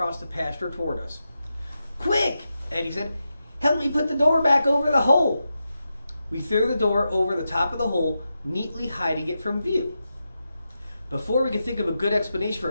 the pasture toward us. Quick, Eddie said. Help me put the door back over the hole. We threw the door over the top of the hole, neatly hiding it from view. Before we could think of a good explanation for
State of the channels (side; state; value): both; inverted; correlation -0.89